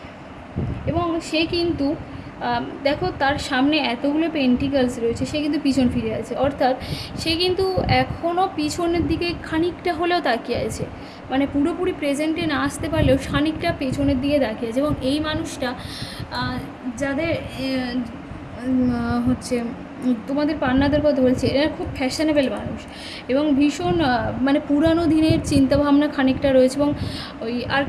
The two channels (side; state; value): both; identical; correlation 1.00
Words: এবং সে কিন্তু দেখো তার সামনে এতগুলো পেন্টিকালস রয়েছে, সে কিন্তু পিছন ফিরে আছে, অর্থাৎ সে কিন্তু এখনও পিছনের দিকে খানিকটা হলেও তাকিয়ে আছে। মানে পুরোপুরি প্রেজেন্টে না আসতে পারলেও খানিকটা পেছনের দিকে তাকিয়ে আছে। এবং এই মানুষটা যাদের হচ্ছে তোমাদের পার্টনারদের কথা বলছি, এরা খুব ফ্যাশনেবল মানুষ এবং ভীষণ মানে পুরানো দিনের চিন্তাভাবনা খানিকটা রয়েছে। এবং ওই